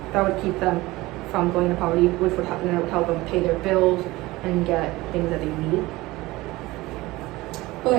that would keep them from going into poverty, which would help them pay their bills and get things that they need.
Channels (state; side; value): quieter; left; 19.7 dB